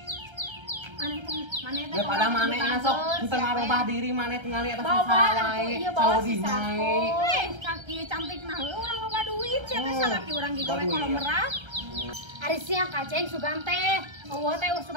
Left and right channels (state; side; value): late; left; 1.3 ms